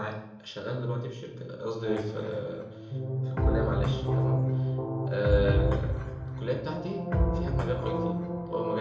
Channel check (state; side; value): identical; both; correlation 1.00